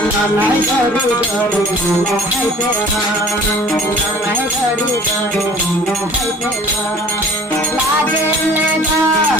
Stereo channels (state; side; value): normal; both; correlation 0.49